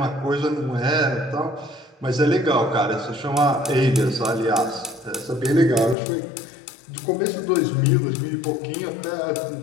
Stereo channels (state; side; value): drops out; right; at 6.0 s